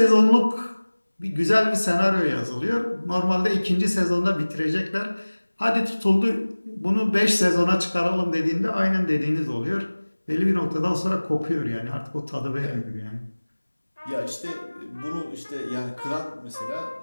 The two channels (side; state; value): both; inverted; correlation -1.00